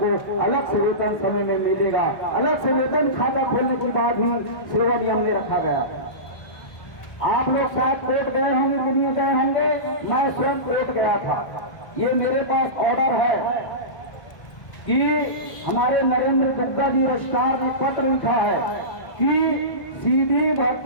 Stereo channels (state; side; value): late; right; 1.6 ms